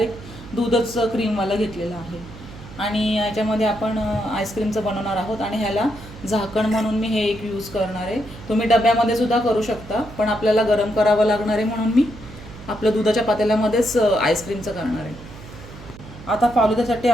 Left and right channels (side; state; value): right; noise; hum, 16 dB below the sound